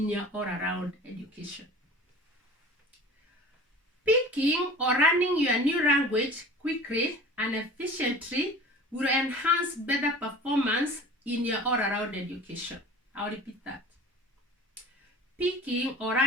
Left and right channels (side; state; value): both; normal; correlation 0.41